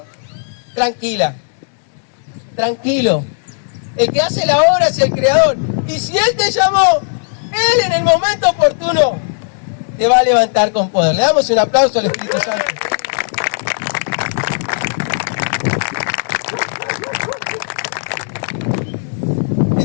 tranquila. Tranquilo. El que hace la obra es el Creador. Y si Él te llamó, Él en el momento oportuno te va a levantar con poder. Le damos un aplauso al Espíritu Santo.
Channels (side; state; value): right; silent; digital silence